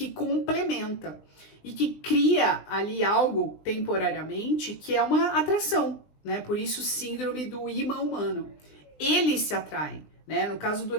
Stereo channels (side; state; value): right; late; 20 ms